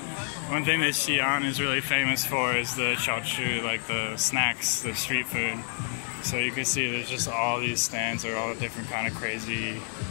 One thing that Xi'an is really famous for is the xiaochu, like the snacks, the street food. So you can see there's just all these stands are all different kind of crazy,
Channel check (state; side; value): silent; right; 59 dB below the other